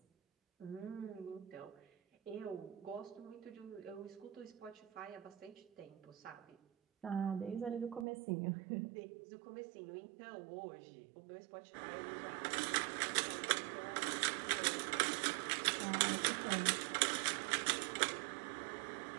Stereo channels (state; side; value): drops out; left; at 8.1 s